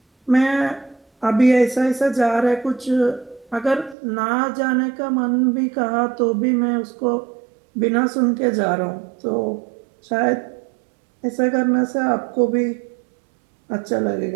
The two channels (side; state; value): left; drops out; at 4.0 s